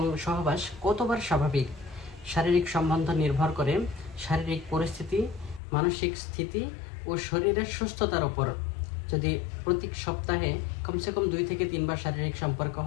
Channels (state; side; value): drops out; right; at 5.6 s